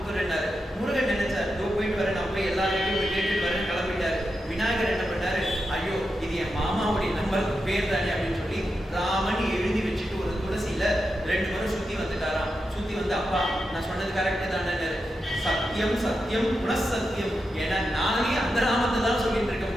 முருகன் நினைச்சார், போயிட்டு வரேன், நான் போய் எல்லாருக்கும் போய் கேட்டுட்டு வரேன், கிளம்பிட்டாரு. விநாயகர் என்ன பண்ணாரு, ஐயோ இது என் மாமாவுடைய நம்பருக்கு பேர் தானே அப்படின்னு சொல்லி ராமன் எழுதி வச்சுட்டு ஒரு துளசியில 2 முறை சுத்தி வந்துட்டாராம். சுத்தி வந்து, அப்பா நான் சொன்னது கரெக்ட் தானே, சத்தியம் சத்தியம் புனசத்தியம், ஏன்னா நானே அந்த நாமத்தை தான் சொல்லிட்டு இருக்கும்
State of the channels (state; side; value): normal; both; correlation 0.88